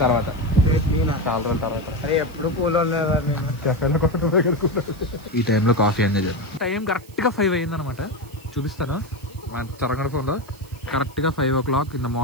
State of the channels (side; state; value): right; noise; hiss, 24 dB below the sound